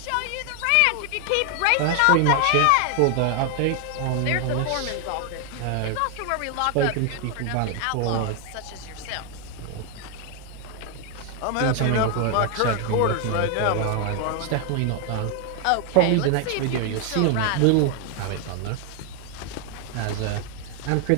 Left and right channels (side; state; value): both; different; correlation 0.00